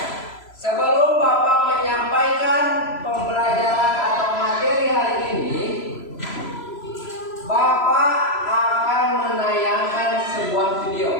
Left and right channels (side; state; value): right; late; 3.0 ms